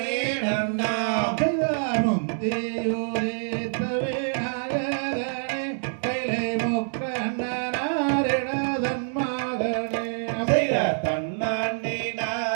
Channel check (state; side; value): silent; left; digital silence